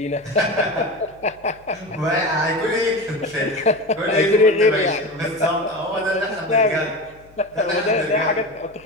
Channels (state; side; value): noise; left; hum, 28 dB below the sound